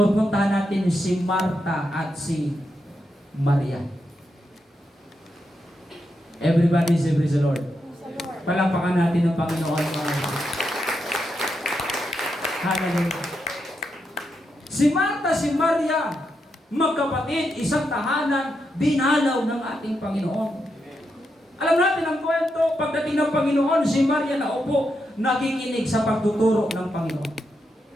puntahan natin si Marta at si Maria. Everybody say praise the Lord. Palapakan natin ang Panginoon. Hallelujah. Si Marta, si Maria, magkapatid, isang tahanan, dinalaw ng ating Panginoon. Alam natin ang kwento, pagdating ng Panginoon, si Maria naupo, nakikinig sa pagtuturo ng Panginoon.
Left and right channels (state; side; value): normal; both; correlation 0.84